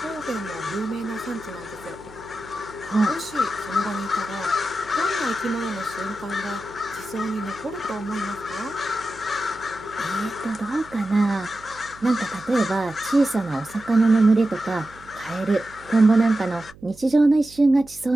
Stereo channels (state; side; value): noise; right; hum, 22 dB below the sound